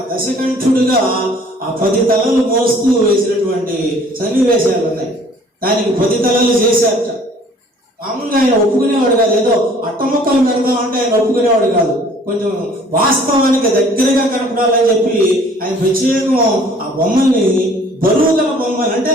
దశకంఠుడిగా ఆ 10 తలలు మోస్తూ వేసినటువంటి సన్నివేశాలు ఉన్నాయి. దానికి 10 తలలు చేశారట. మామూలుగా ఆయన ఒప్పుకునేవాడు కాదు, ఏదో అట్టముక్కలు పెడదాం అంటే ఆయన ఒప్పుకునేవాడు కాదు. కొంచెం వాస్తవానికి దగ్గరగా కనపడాలని చెప్పి ఆయన ప్రత్యేకం ఆ బొమ్మల్ని బరువు గల బొమ్మలు, అంటే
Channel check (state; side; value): normal; both; correlation 0.54